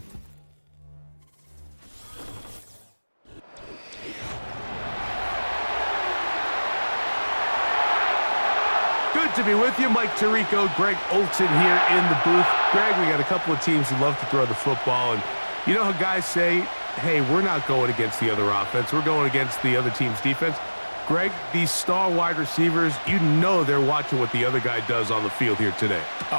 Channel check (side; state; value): both; inverted; correlation -1.00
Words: Good to be with you. Mike Tirico, Greg Olson here in the booth. Greg, we got a couple of teams who love to throw the football, and you know how guys say, hey, we're not going against the other offense. We're going against the other team's defense. Greg, these star wide receivers, you know they're watching what the other guy does on the field here today.